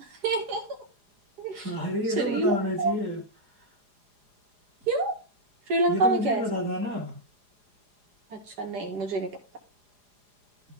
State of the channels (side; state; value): left; late; 4.9 ms